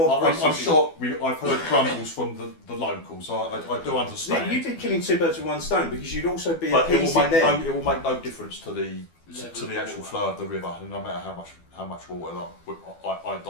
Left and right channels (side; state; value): right; late; 12 ms